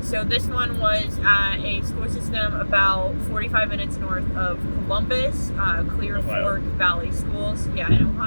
So this one was at a school system about 45 minutes north of Columbus, Clear Fork Valley Schools, in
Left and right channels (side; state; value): both; inverted; correlation -1.00